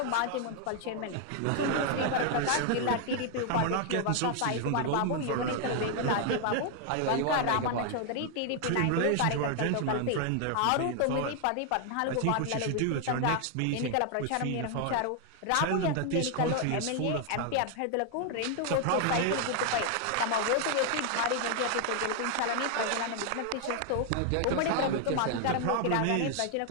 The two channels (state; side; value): different; both; correlation 0.00